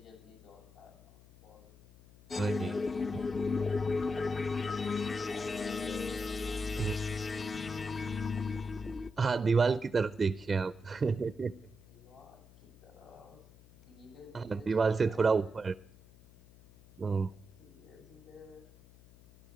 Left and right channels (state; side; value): noise; left; hum, 23 dB below the sound